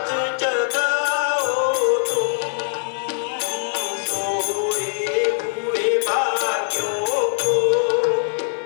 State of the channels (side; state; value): right; silent; 56 dB below the other